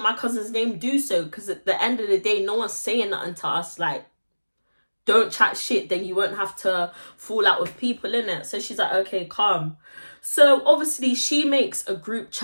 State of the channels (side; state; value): both; inverted; correlation -1.00